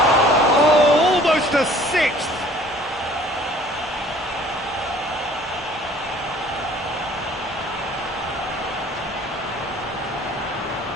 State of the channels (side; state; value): both; normal; correlation 0.52